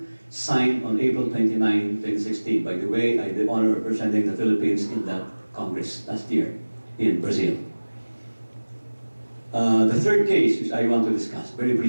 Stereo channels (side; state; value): both; inverted; correlation -1.00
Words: signed on April 29, 2016. By the way, I had the honor of representing the Philippines in that Congress last year in Brazil. The third case, which I want to discuss very